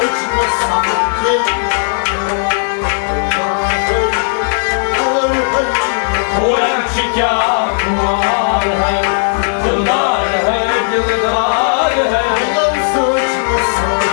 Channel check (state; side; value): silent; right; digital silence